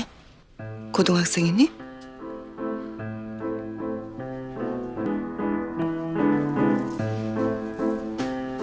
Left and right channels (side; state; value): both; identical; correlation 1.00